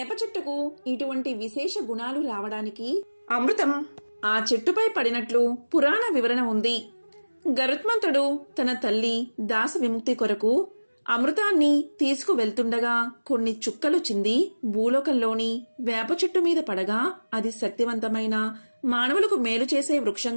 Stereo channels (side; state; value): both; inverted; correlation -1.00